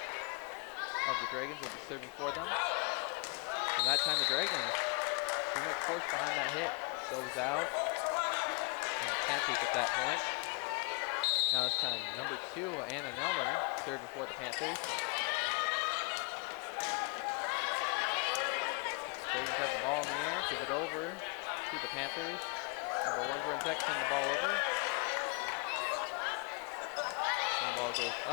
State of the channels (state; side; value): quieter; right; 36.5 dB